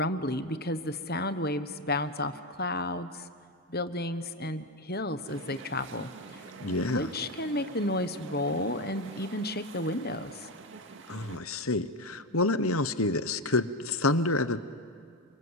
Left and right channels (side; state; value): both; normal; correlation 0.13